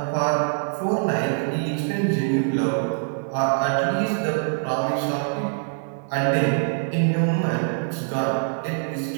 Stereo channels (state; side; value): silent; left; 63 dB below the other